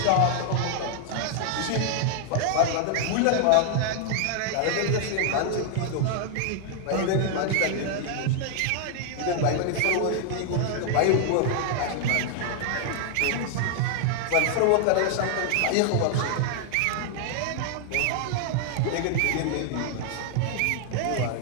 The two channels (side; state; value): both; different; correlation 0.00